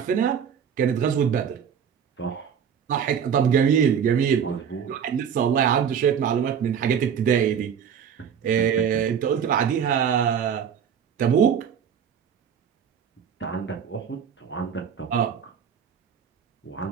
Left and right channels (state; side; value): quieter; left; 7.8 dB